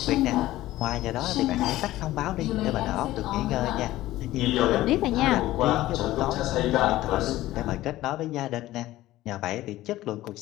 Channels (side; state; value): right; quieter; 15.9 dB